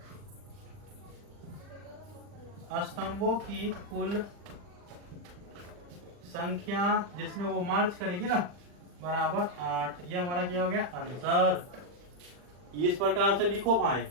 स्तंभों की कुल संख्या जिसमें वो मार्च करेगी ना बराबर 8। ये हमारा क्या हो गया? आंसर। इस प्रकार से लिखो भाई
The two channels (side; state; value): left; late; 40 ms